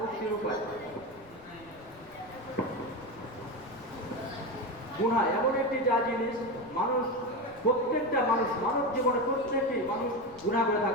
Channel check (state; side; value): noise; left; rumble, 24 dB below the sound